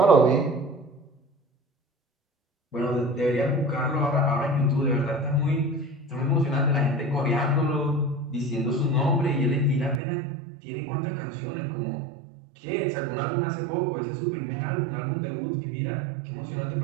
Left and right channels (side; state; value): left; drops out; at 10.0 s